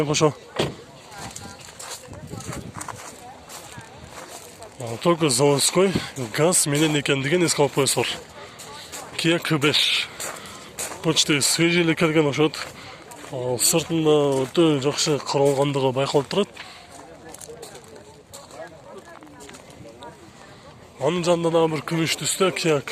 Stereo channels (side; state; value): both; identical; correlation 1.00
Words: кошо. Только заводской газ менен экендигин эске алып коесуңар. Kia K5. Почти свежий эле келген окшойт. Сыртында өтө жакшы каралгандыгы байкалып турат. Анын жанында дагы бир күмүш түстө Kia